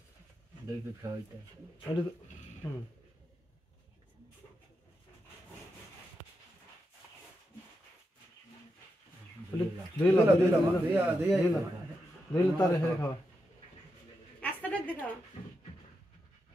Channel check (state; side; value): normal; both; correlation 0.86